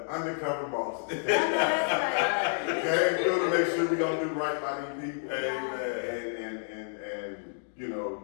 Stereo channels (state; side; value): silent; right; digital silence